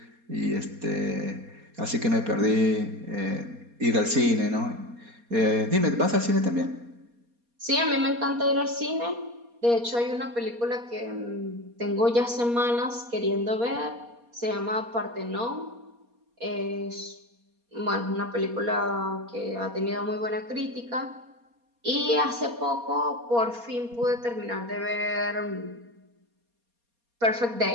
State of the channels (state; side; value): late; left; 4.2 ms